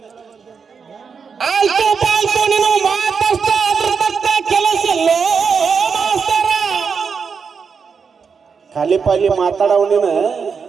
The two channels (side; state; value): left; quieter; 5.9 dB